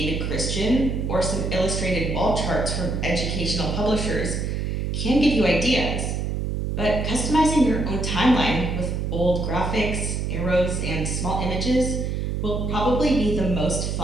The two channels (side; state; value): right; noise; hum, 1 dB below the sound